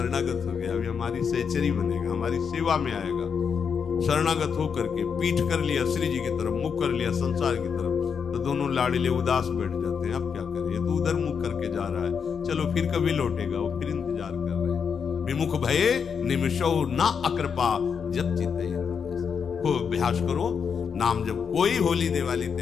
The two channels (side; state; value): right; quieter; 6.6 dB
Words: हो गया, अभी हमारी सहचरी बनेगा, हमारी सेवा में आएगा। शरणागत होकर के पीठ कर लिया श्री जी की तरफ, मुख कर लिया संसार की तरफ, तो दोनों लाड़िले उदास बैठ जाते हैं। अब क्या करें, ये तो उधर मुख करके जा रहा है, चलो फिर कभी लौटेगा, वो फिर इंतजार कर रहे हैं। विमुख भये निमिषो ना अकृपा जब चिते। खूब अभ्यास करो नाम जब। कोई होली दिवाली